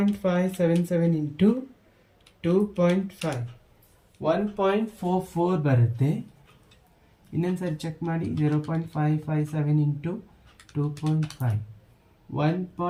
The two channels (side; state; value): both; identical; correlation 1.00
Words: into 2.5 1.44 ಬರುತ್ತೆ. ಇನ್ನೊಂದ್ಸರಿ ಚೆಕ್ ಮಾಡಿ. 0.557 into 2.5